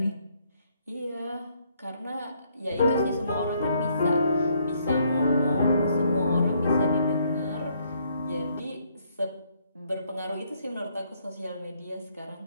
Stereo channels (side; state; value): both; inverted; correlation -0.70